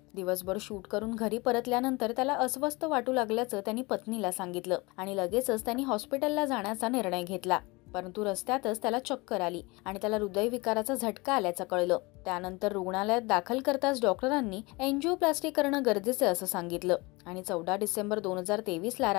दिवसभर शूट करून घरी परतल्यानंतर त्याला अस्वस्थ वाटू लागल्याचं त्यांनी पत्नीला सांगितलं आणि लगेचच त्यांनी हॉस्पिटलला जाण्याचा निर्णय घेतला। परंतु रस्त्यातच त्याला चक्कर आली आणि त्याला हृदयविकाराचा झटका आल्याचं कळलं। त्यानंतर रुग्णालयात दाखल करताच डॉक्टरांनी एंजिओप्लास्टी करणं गरजेचं असं सांगितलं आणि 14 डिसेंबर 2023 ला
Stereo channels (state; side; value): quieter; right; 24.9 dB